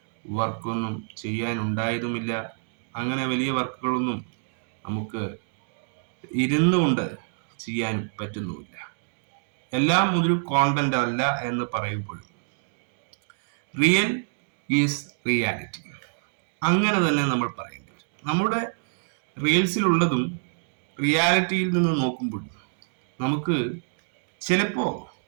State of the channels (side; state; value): left; silent; digital silence